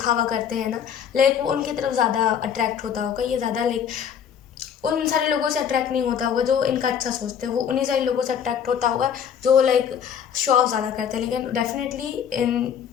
करते हैं ना, लाइक वो उनकी तरफ ज़्यादा अट्रैक्ट होता होगा। ये ज़्यादा लाइक उन सारे लोगों से अट्रैक्ट नहीं होता होगा जो इनका अच्छा सोचते हैं, वो उन्हीं सारे लोगों से अट्रैक्ट होता होगा जो लाइक शो ऑफ ज़्यादा करते हैं। लेकिन डेफिनेटली इन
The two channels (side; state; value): right; quieter; 8.2 dB